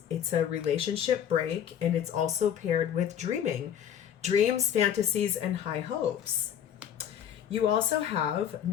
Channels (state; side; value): quieter; right; 9.3 dB